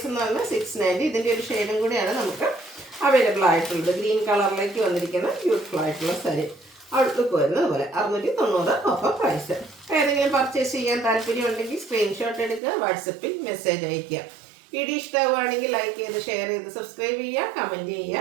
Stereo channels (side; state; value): left; drops out; at 12.6 s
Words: എന്ന് പറഞ്ഞാൽ 690. ഇതിൻ്റെ ഒരു ഷെയ്ഡും കൂടിയാണ് നമുക്ക് അവൈലബിൾ ആയിട്ടുള്ളത്. ഗ്രീൻ കളറിലേക്ക് വന്നിരിക്കുന്ന ബ്യൂട്ടിഫുൾ ആയിട്ടുള്ള സാരി. ഔട്ട്ലുക്ക് വരുന്നത് അതുപോലെ. 690 ഓഫർ പ്രൈസ്. ഏതെങ്കിലും പർച്ചേസ് ചെയ്യാൻ താല്പര്യമുണ്ടെങ്കിൽ സ്ക്രീൻഷോട്ട് എടുക്കുക, വാട്സപ്പിൽ മെസ്സേജ് അയയ്ക്കുക. വീഡിയോ ഇഷ്ടമാവുകയാണെങ്കിൽ ലൈക്ക് ചെയ്ത് ഷെയർ ചെയ്ത് സബ്സ്ക്രൈബ് ചെയ്യുക, കമൻറ്റ്